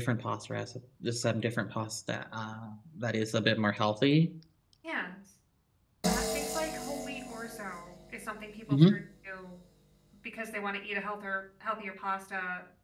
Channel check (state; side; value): identical; both; correlation 1.00